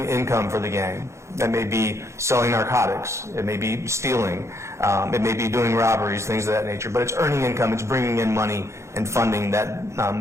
income for the gang. That may be selling narcotics, it may be stealing, it may be doing robberies, things of that nature, but it's earning income, it's bringing in money and funding that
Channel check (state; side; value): late; left; 0.14 ms